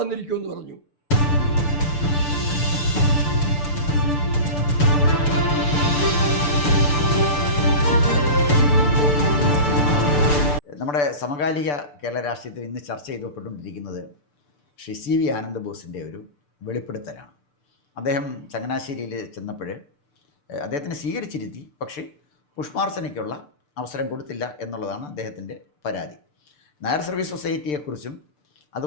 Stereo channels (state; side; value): late; right; 6.8 ms